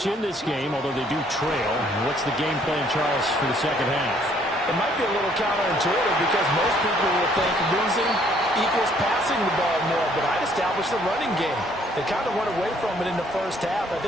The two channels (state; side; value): normal; both; correlation 0.64